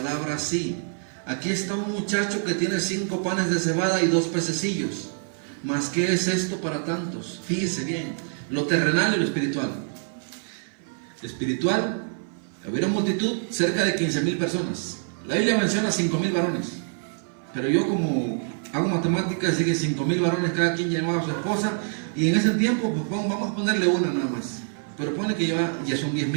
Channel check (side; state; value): left; silent; 58 dB below the other